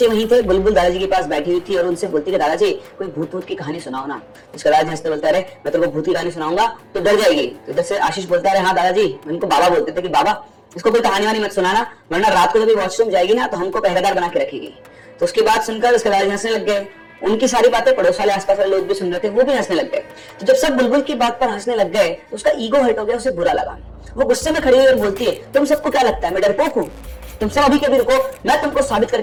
वहीं थे। बुलबुल दादाजी के पास बैठी हुई थी और उनसे बोलती है दादाजी कोई भूत भूत की कहानी सुनाओ ना। उसका दादाजी हंसते बोलता है मैं तेरे को भूत की कहानी सुनाऊंगा तो डर जाएगी। तो इधर से आशीष बोलता है हाँ दादाजी, उनको बाबा बोलते थे कि बाबा इसको कोई कहानी वानी मत सुनाना, वरना रात को जब वॉशरूम जाएगी ना तो हमको पहरेदार बना के रखेगी। तो उसकी बात सुनकर उसके दादाजी हंसने लग गए। उनकी सारी बातें पड़ोस वाले आसपास वाले लोग भी सुन रहे थे, वो भी हंसने लग गए। तो जब सब बुलबुल की बात पर हंसने लग गए तो उसका ईगो हर्ट हो गया, उसे बुरा लगा। वो गुस्से में खड़ी हुई और बोलती है तुम सबको क्या लगता है मैं डरपोक हूँ? तुम सब अभी के अभी रुको, मैं तुमको साबित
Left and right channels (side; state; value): both; identical; correlation 1.00